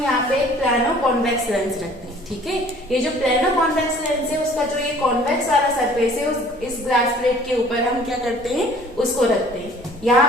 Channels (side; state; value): both; normal; correlation 0.52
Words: यहाँ पे एक प्लानो कॉन्वेक्स लेंस रखते हैं। ठीक है, ये जो प्लानो कॉन्वेक्स लेंस है उसका जो ये कॉन्वेक्स वाला सरफेस है इस ग्लास प्लेट के ऊपर हम क्या करते हैं, उसको रखते हैं।